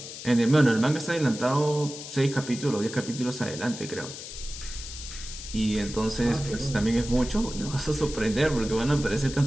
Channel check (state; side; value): noise; left; hiss, 11 dB below the sound